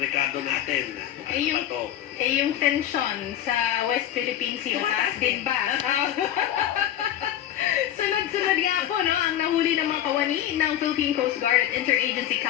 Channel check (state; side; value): quieter; right; 11.6 dB